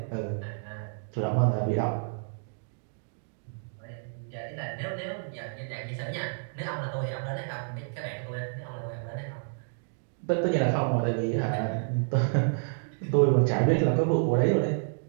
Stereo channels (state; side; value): silent; left; digital silence